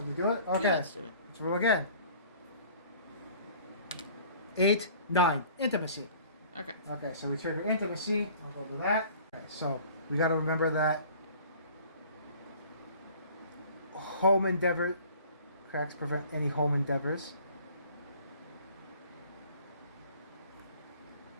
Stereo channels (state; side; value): inverted; both; correlation -0.49